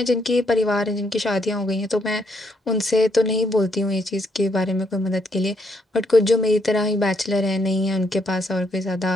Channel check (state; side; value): normal; both; correlation 0.74